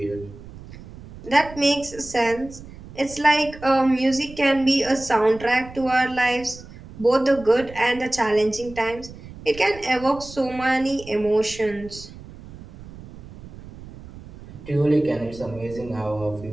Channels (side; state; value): right; noise; rumble, 17 dB below the sound